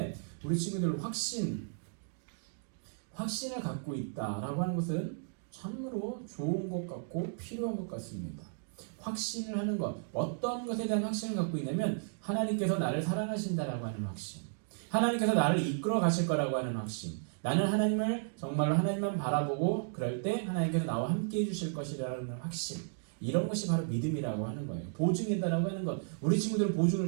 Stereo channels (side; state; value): left; silent; digital silence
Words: 우리 친구들 확신을 갖고 있다라고 하는 것은 참으로 좋은 것 같고 필요한 것 같습니다. 확신을 하는 것, 어떤 것에 대한 확신을 갖고 있냐면 하나님께서 나를 사랑하신다라고 하는 확신, 하나님께서 나를 이끌어 가실 거라고 하는 확신, 나는 하나님을 정말로 하나님만 바라보고 그럴 때 하나님께서 나와 함께 해주실 것이라는 확신, 이런 것이 바로 믿음이라고 하는 거예요. 보증이다라고 하는 것. 우리 친구들은 보증을